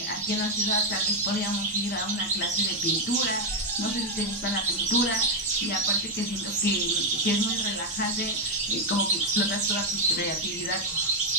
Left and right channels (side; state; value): both; normal; correlation 0.03